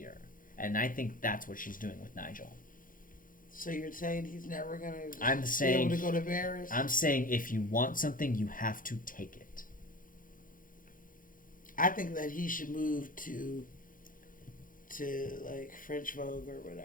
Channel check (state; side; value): late; right; 0.40 ms